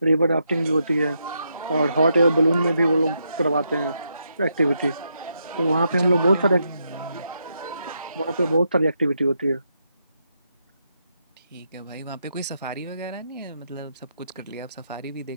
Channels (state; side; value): inverted; both; correlation -0.81